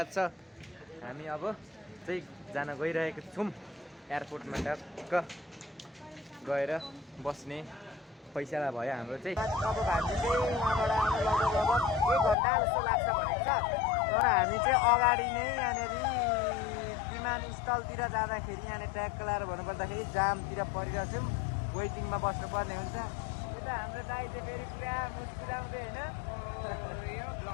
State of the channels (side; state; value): right; drops out; at 12.4 s